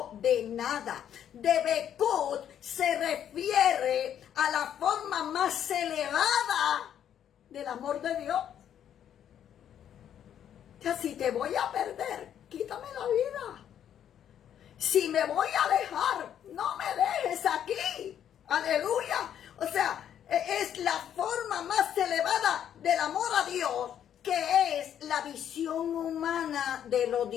de nada. Debekut se refiere a la forma más elevada del amor de Dios. O sea, si te voy a perder, quítame la vida. Si me voy a dejar, no me dejes aquí. Aleluya. O sea, es la forma más elevada del amor a Dios, que es la visión humana de lo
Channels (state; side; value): quieter; right; 9.7 dB